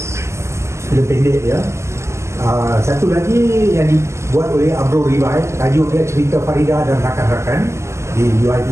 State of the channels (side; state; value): left; late; 0.13 ms